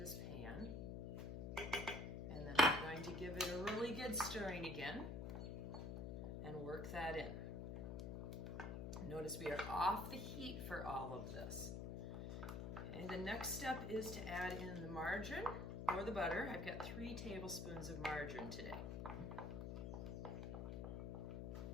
pan. And then I'm going to give it a really good stirring again and work that in. Notice we are off the heat for all of this. Okay, the next step is to add in the margarine or the butter. I've got 3 tablespoons of margarine today.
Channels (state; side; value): noise; left; hum, 4 dB below the sound